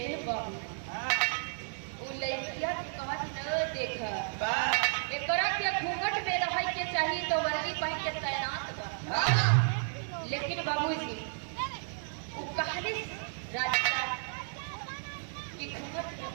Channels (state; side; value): silent; left; digital silence